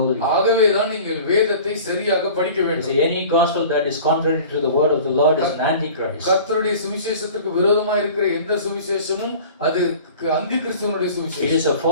ஆகவே தான் நீங்கள் வேதத்தை சரியாக படிக்க வேண்டும். See, any gospel that is contrary to the word of the Lord is an antichrist. கர்த்தருடைய சுவிசேஷத்துக்கு விரோதமாக இருக்கிற எந்த சுவிசேஷமும் அது அந்தி கிறிஸ்துவனுடைய It சுவிசேஷம். is a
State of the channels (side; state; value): both; inverted; correlation -0.43